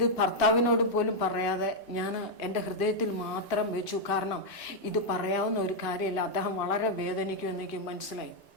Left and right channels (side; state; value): both; normal; correlation -0.02